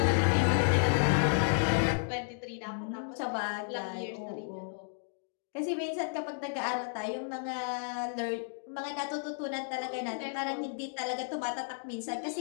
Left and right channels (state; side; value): silent; right; digital silence